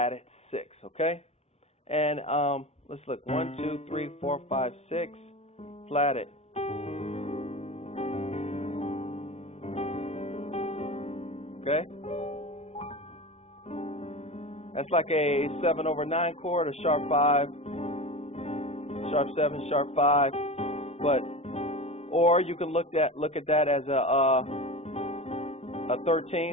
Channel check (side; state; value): right; late; 0.31 ms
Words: 6, okay? And let's look. 1, 2, 3, 4, 5, 6, flatted. Okay? That's like a 7/9 chord, a sharp 5, sharp 7, sharp 5. But or you can look at that as a